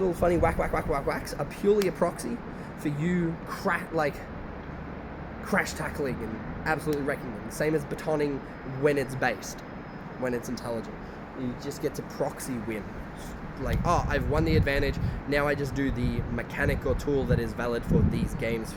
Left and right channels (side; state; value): both; identical; correlation 1.00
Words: funny whacks are purely a proxy for you crash tackling and absolutely wrecking them. Same as batoning when it's based, when it's intelligent. You just get to proxy win. Like, I've won the advantage, now I just do the mechanic or tool that is valid for these games,